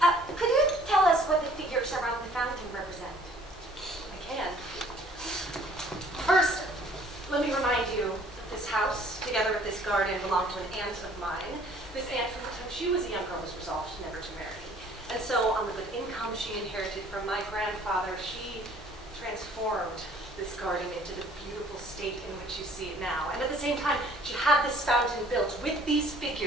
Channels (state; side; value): normal; both; correlation 0.56